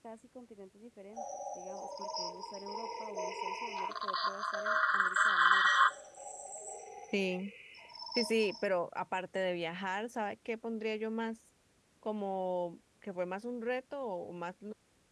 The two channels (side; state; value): both; identical; correlation 1.00